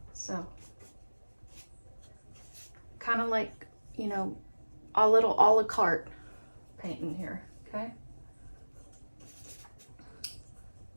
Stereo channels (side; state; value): both; inverted; correlation -1.00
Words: So, kind of like, you know, a little a la carte painting here, okay?